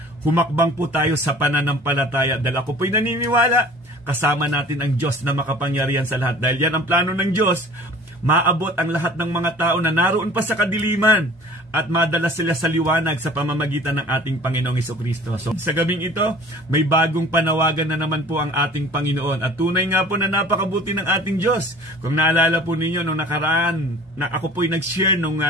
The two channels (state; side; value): normal; both; correlation 0.46